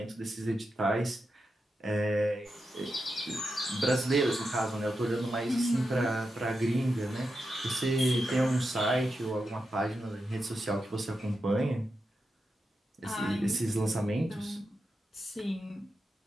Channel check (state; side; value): normal; both; correlation 0.88